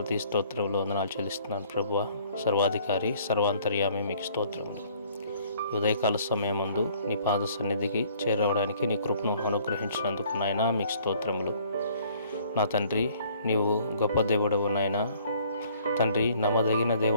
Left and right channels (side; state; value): both; inverted; correlation -0.58